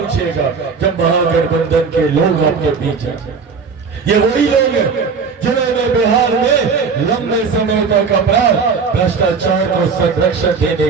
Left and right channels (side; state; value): left; quieter; 5.3 dB